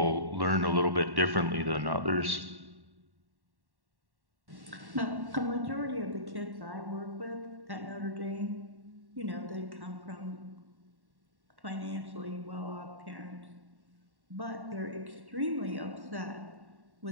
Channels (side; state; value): left; late; 1.1 ms